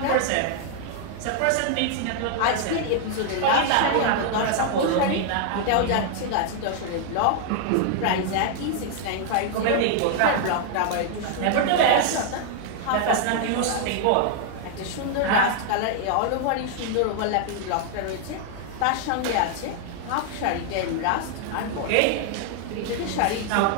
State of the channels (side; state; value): both; different; correlation 0.00